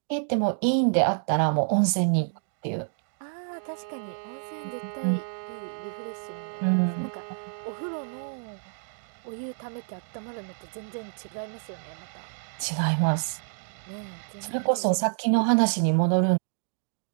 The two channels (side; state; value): left; silent; digital silence